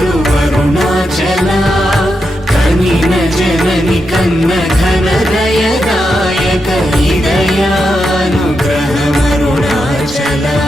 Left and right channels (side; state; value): both; normal; correlation 0.85